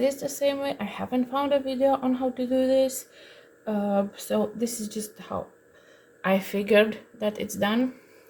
the same way. I haven't found a video on how to do this, so this is just how I figured that it's done.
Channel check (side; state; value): both; identical; correlation 1.00